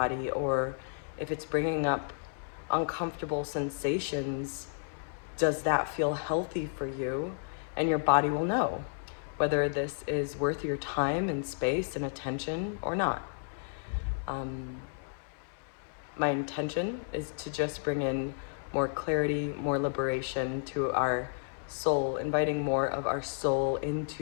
or if it's bringing up uncomfortable sensations, does that feel healthy for you? And your body will know whether this is worth your time and space and attention or not. My intention is to just bring in more clarity, more liberation to our soul, inviting more of our soul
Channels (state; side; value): silent; right; 56 dB below the other